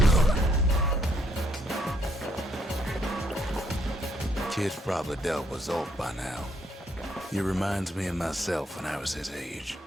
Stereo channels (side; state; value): both; normal; correlation 0.71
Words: Kid's probably dealt with Zolf by now. He reminds me of myself when I was his age.